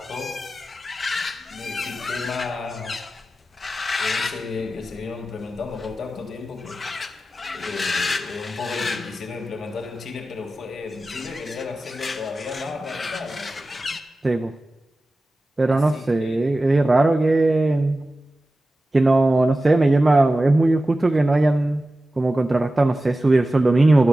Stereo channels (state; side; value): normal; both; correlation 0.95